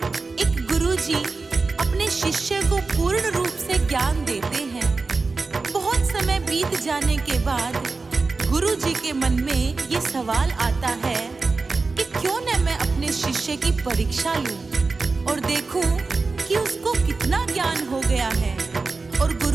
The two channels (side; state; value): left; quieter; 3.9 dB